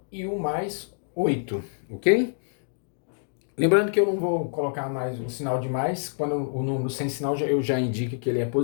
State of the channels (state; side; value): silent; right; digital silence